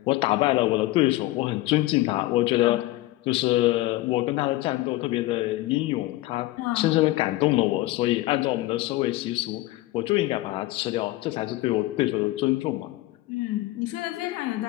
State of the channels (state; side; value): quieter; right; 18.0 dB